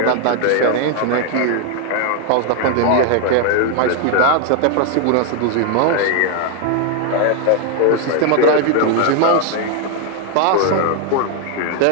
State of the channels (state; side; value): different; both; correlation 0.00